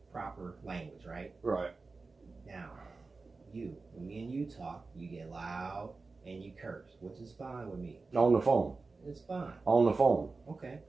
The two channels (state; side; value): quieter; left; 3.9 dB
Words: proper language, right? Right. Now, when me and you talk, you get loud and you curse, which is fine with me. On the phone. It's fine. On the phone. Okay,